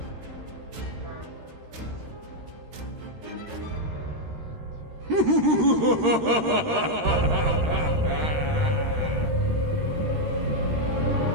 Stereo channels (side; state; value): left; late; 13 ms